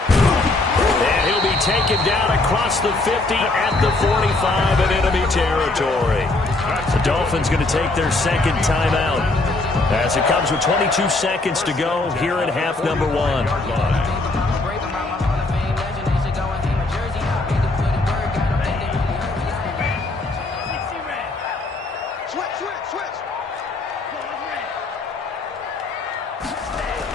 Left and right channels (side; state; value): right; quieter; 3.1 dB